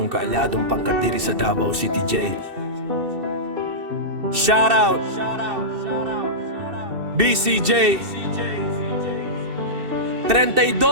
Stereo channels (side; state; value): left; late; 2.7 ms